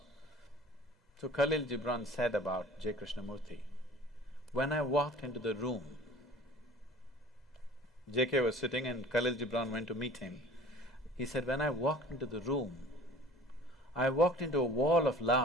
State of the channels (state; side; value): normal; both; correlation 0.45